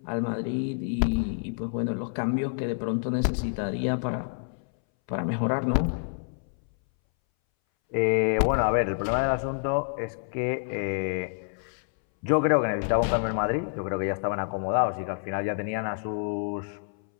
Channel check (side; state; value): right; silent; 60 dB below the other